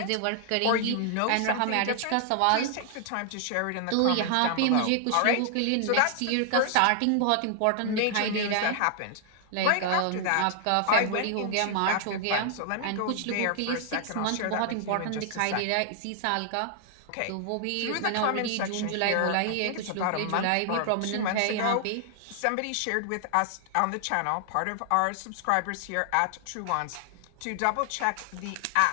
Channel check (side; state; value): both; different; correlation 0.00